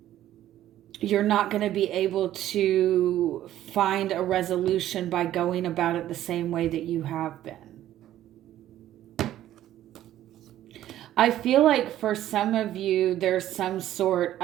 You're not going to be able to find a resolution by going about it the same way that you have been. I feel like for some of you, there's some sort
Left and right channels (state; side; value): quieter; left; 12.9 dB